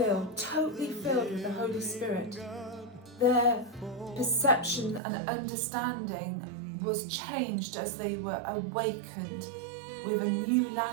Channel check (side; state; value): left; drops out; at 5.0 s